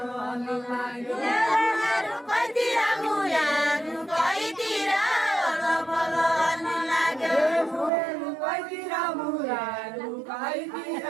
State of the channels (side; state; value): left; drops out; at 7.9 s